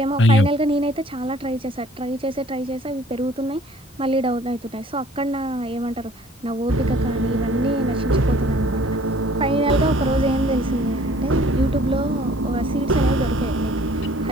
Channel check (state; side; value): normal; both; correlation 0.55